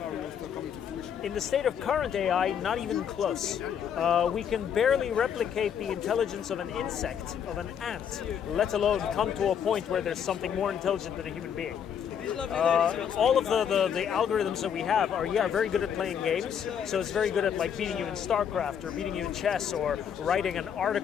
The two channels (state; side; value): quieter; right; 8.2 dB